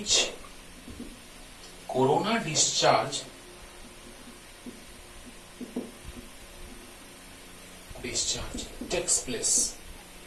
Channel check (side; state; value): both; identical; correlation 1.00